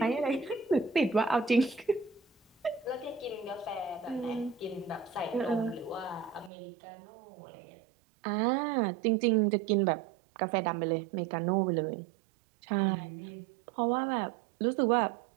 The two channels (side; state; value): left; drops out; at 6.5 s